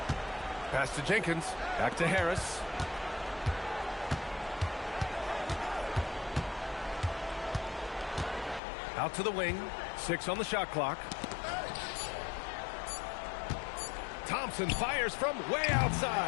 Pass to Jenkins. Back to Harris. Out to the wing. 6 on the shot clock. Thompson fires from way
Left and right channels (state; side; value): drops out; right; at 8.6 s